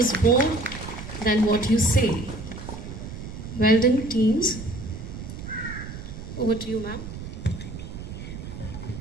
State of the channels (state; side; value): noise; right; rumble, 10 dB below the sound